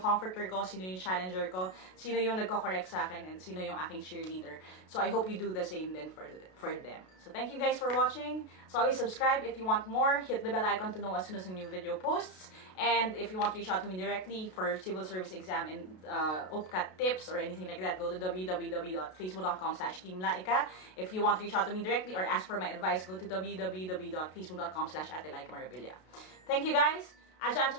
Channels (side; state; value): right; late; 32 ms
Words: comforter ko, sino yung challenger ko, sino yung nagko-correct sa akin, and sino yung aking cheerleader. So I hope you do the same then for them. So thank you guys for watching. So always subscribe if you want more. Hit the bell icon to know as soon as a new video posts. And if you want to reach out to me directly for civil service exam and OPCAT tips or anything like that, go to www.facebook.com/Team Lyqa. If you want to reach out to me directly or ask for my advice, go to www.facebook.com/Ate Lyqa Marabilia. Thank you guys. Aja